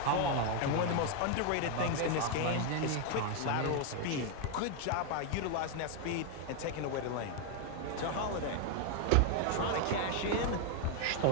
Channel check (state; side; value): different; both; correlation 0.01